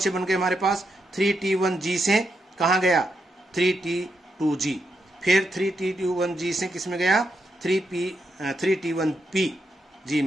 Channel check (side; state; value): both; normal; correlation 0.83